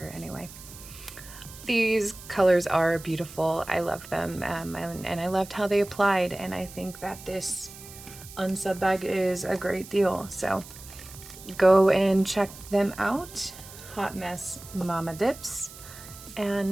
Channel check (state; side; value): noise; right; hiss, 16 dB below the sound